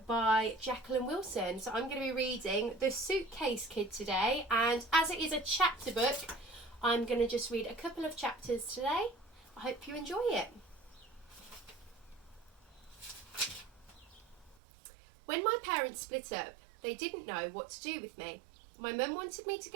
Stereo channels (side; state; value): left; drops out; at 14.6 s